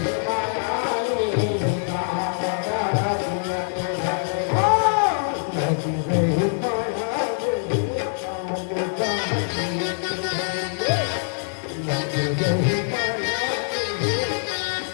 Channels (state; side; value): silent; right; 63 dB below the other